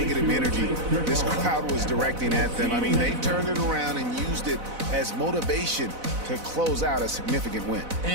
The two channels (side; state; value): left; late; 4.0 ms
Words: energy this crowd was directing at them. I mean, they turned it around and used it as motivation to close out a significant win.